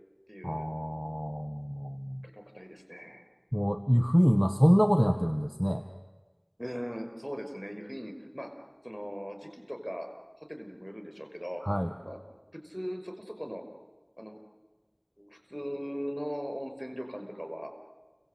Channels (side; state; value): both; identical; correlation 1.00